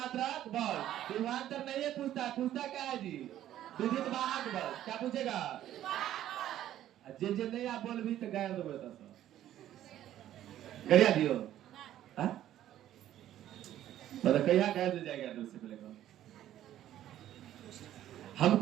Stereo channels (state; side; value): quieter; left; 12.3 dB